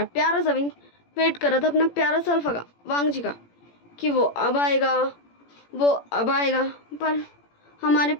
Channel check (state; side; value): late; right; 17 ms